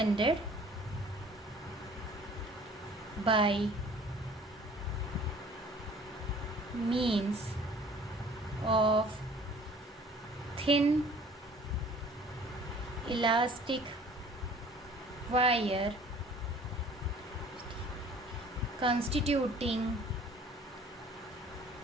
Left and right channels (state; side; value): normal; both; correlation 0.51